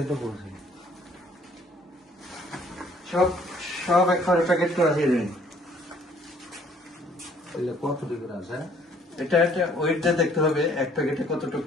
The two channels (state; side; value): normal; both; correlation 0.60